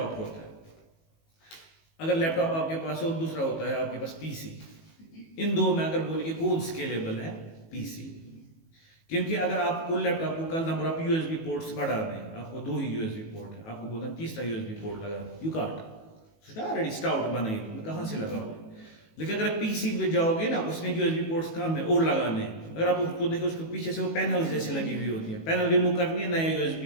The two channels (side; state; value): right; late; 18 ms